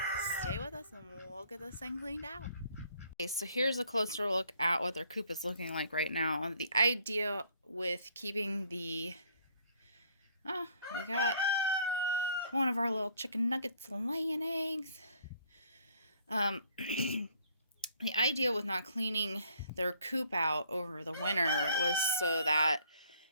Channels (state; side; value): inverted; both; correlation -0.62